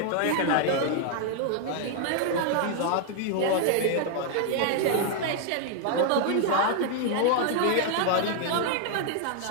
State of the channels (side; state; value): both; different; correlation 0.00